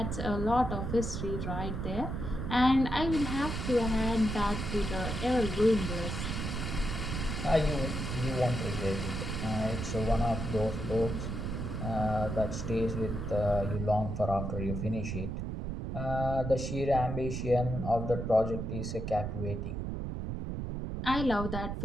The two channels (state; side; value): noise; right; rumble, 3 dB below the sound